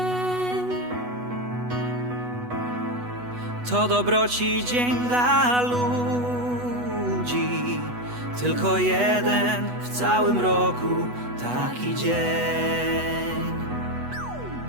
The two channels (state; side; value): late; left; 8.1 ms